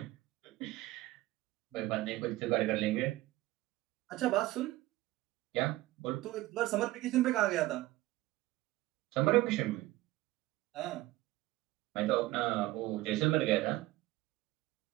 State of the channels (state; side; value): quieter; left; 17.9 dB